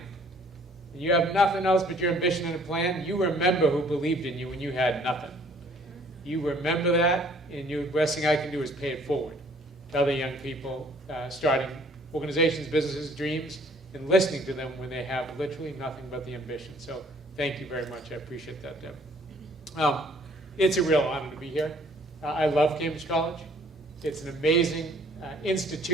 and you have nothing else but your ambition and a plan, you remember who believed in you when you had nothing. You remember that, and the best thing I can do is pay it forward to other young people starting organizations, businesses, dreams, and listening to them when they have literally nothing but the ambition. So thank you very much. I appreciate that, Deb. It's a real honor to be here. I love Cambridge College. It's an amazing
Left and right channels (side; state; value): both; normal; correlation 0.58